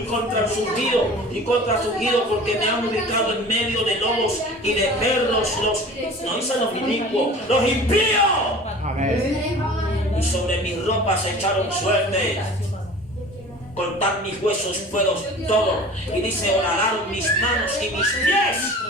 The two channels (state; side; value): normal; both; correlation 0.41